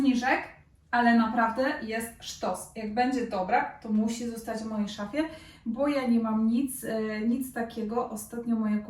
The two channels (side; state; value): both; identical; correlation 1.00